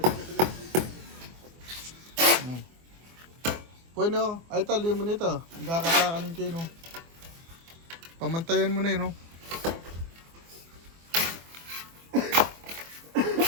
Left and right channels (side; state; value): left; late; 24 ms